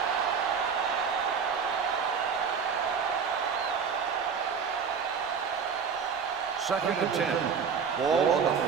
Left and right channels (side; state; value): left; quieter; 6.3 dB